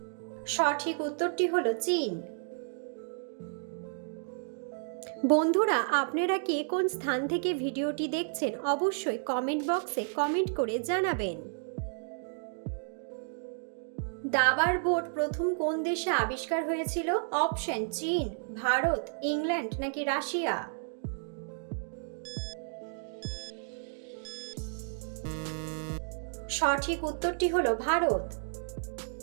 সঠিক উত্তরটি হলো চীন। বন্ধুরা, আপনারা কে কোন স্থান থেকে ভিডিওটি দেখছেন অবশ্যই কমেন্ট বক্সে কমেন্ট করে জানাবেন। দাবার বোর্ড প্রথম কোন দেশে আবিষ্কার হয়েছিল? অপশন চীন, ভারত, ইংল্যান্ড নাকি রাশিয়া। সঠিক উত্তরটি হলো ভারত।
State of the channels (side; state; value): left; silent; digital silence